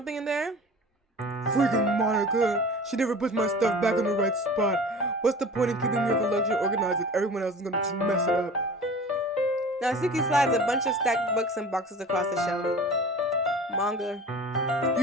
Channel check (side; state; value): both; normal; correlation 0.40